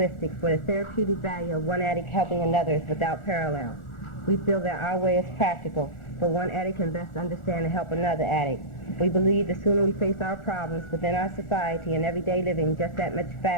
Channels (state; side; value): late; right; 1.4 ms